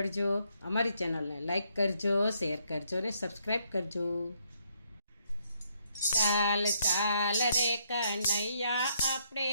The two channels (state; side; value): inverted; both; correlation -0.73